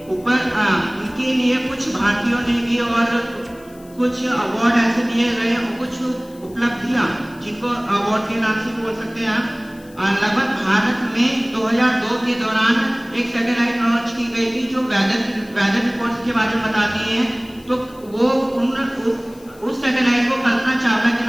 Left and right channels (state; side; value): noise; left; hiss, 26 dB below the sound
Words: ऊपर उनके लिए कुछ भारतीयों ने भी और कुछ अवार्ड ऐसे दिए गए और कुछ उपलब्धियां जिनको अवार्ड के नाम से बोल सकते हैं आप। लगभग भारत में 2002 के दौरान एक सैटेलाइट लॉन्च की गई थी जो वेदर रिपोर्ट्स के बारे में बताती है। तो वो उस सैटेलाइट को कल्पना चावला